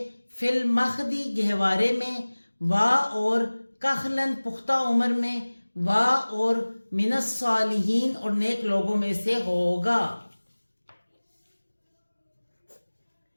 فی المخدی گہوارے میں وا اور کخلن پختہ عمر میں وا اور من الصالحین اور نیک لوگوں میں سے ہوگا.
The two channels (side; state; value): both; inverted; correlation -1.00